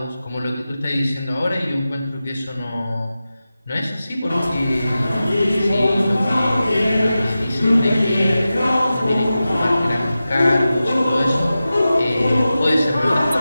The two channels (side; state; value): both; inverted; correlation -0.94